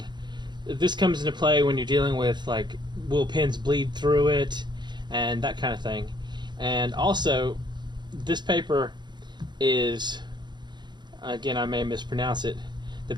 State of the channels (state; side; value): late; left; 0.21 ms